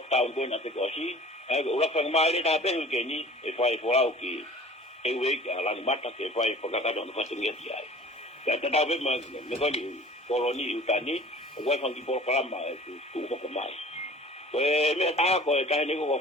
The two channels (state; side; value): normal; both; correlation 0.46